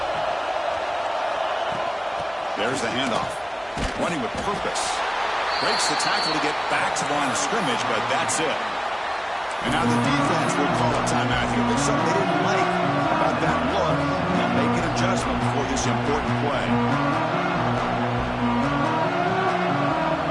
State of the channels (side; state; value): both; identical; correlation 1.00